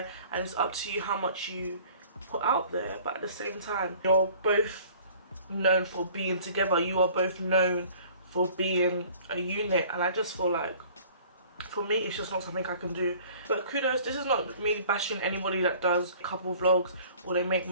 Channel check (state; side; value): inverted; both; correlation -0.50